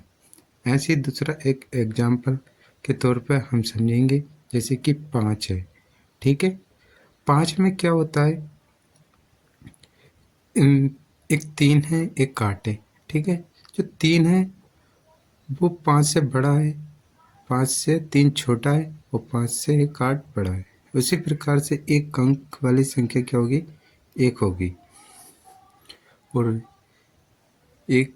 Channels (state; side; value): identical; both; correlation 1.00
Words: ऐसे ही दूसरा एक एग्जाम्पल के तौर पर हम समझेंगे, जैसे कि 5 है। ठीक है, 5 में क्या होता है, एक 3 है, एक 8 है। ठीक है, जो 3 है वो 5 से बड़ा है, 5 से 3 छोटा है और 5 से एक 8 बड़ा है। उसी प्रकार से एक अंक वाली संख्या क्या होगी, 1 होगी। और